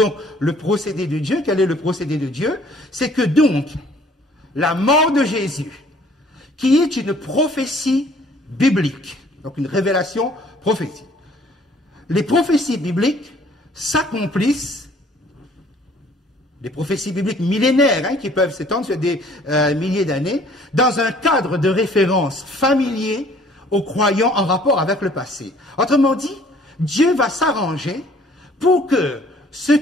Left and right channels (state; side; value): normal; both; correlation 0.57